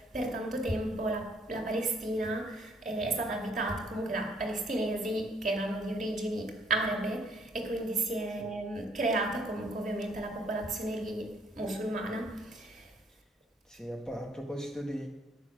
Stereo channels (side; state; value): both; normal; correlation 0.65